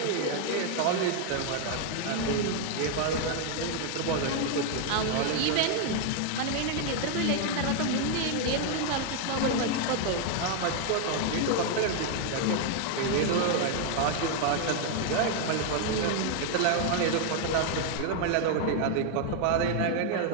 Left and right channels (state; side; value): different; both; correlation 0.00